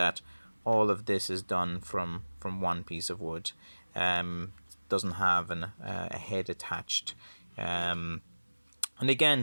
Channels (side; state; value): both; inverted; correlation -1.00